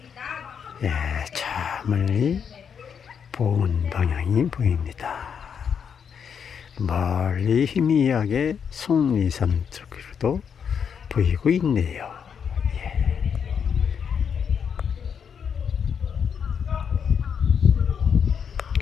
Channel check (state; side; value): quieter; right; 7.1 dB